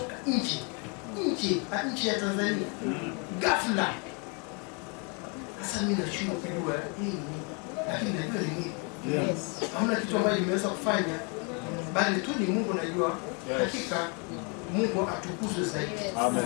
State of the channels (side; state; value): right; quieter; 34.5 dB